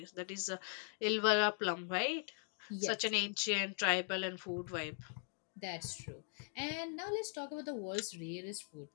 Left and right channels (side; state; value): right; silent; 51 dB below the other